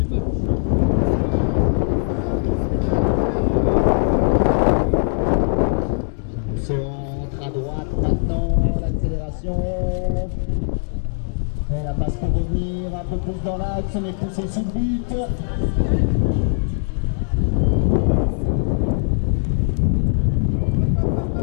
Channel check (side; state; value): right; silent; digital silence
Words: Centre à droite maintenant, l'accélération. Et la passe pour revenir un peu plus dans l'axe, on est poussé sous le but.